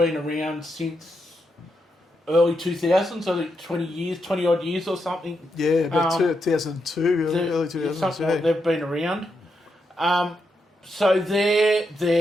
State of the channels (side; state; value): both; normal; correlation 0.83